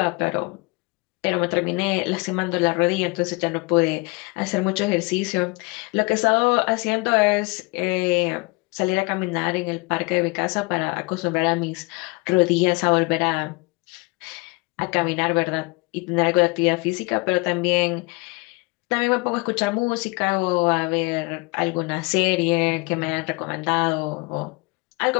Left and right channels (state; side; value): quieter; right; 26.8 dB